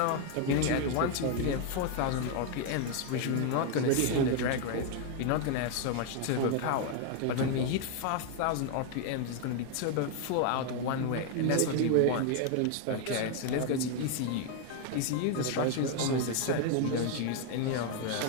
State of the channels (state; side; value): different; both; correlation 0.01